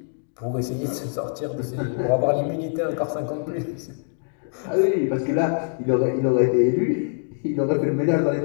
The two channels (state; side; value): silent; right; digital silence